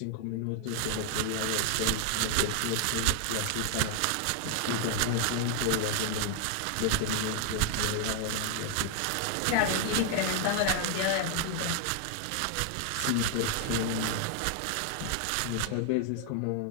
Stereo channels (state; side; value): different; both; correlation 0.00